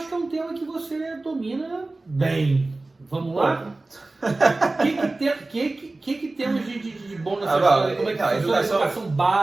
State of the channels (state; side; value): quieter; left; 3.1 dB